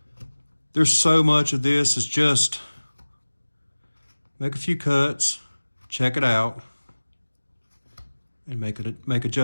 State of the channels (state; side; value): inverted; both; correlation -1.00